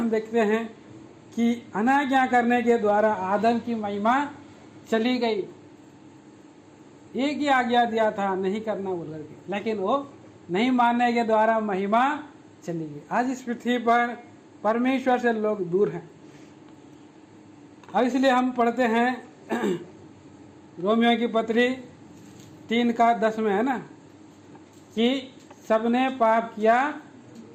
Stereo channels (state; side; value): identical; both; correlation 1.00